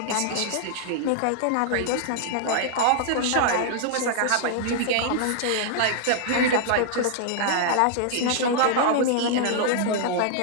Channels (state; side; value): different; both; correlation -0.01